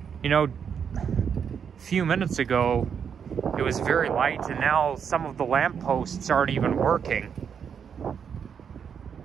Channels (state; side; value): quieter; left; 7.3 dB